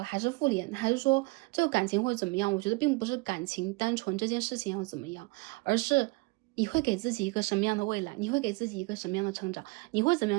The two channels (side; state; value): left; quieter; 25.3 dB